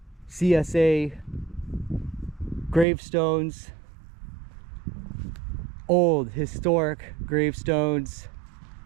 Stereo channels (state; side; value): drops out; left; at 2.9 s